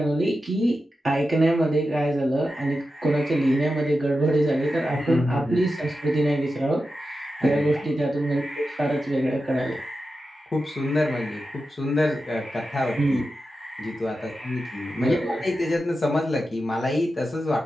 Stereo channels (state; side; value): normal; both; correlation 0.91